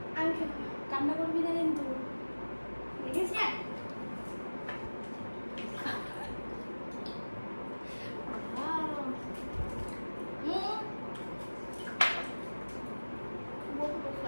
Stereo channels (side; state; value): both; inverted; correlation -1.00